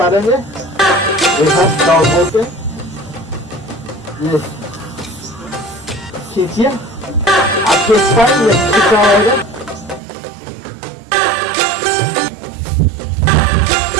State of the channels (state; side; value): drops out; left; at 10.0 s